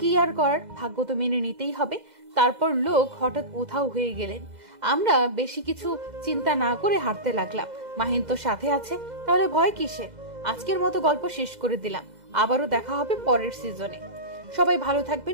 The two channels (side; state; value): left; late; 2.0 ms